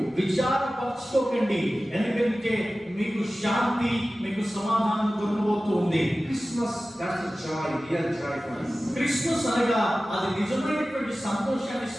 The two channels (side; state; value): both; normal; correlation 0.96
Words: విచారపరచుకోకండి, ఎందుకంటే మీకు శాంతి, మీకు సమాధానం దొరకబోతూ ఉంది. Christmas, that's a joy, real joy for us. Christmas అనగా అది నిజమైనటువంటి సంతోషాన్ని